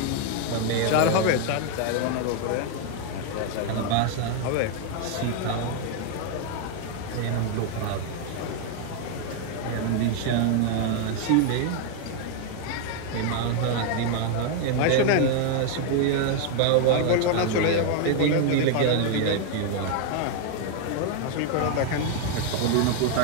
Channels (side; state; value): both; different; correlation 0.01